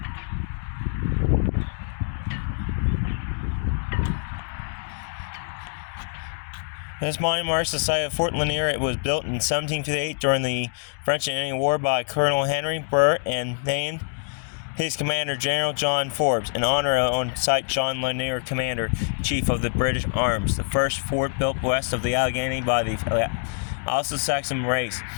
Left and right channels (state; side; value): silent; right; digital silence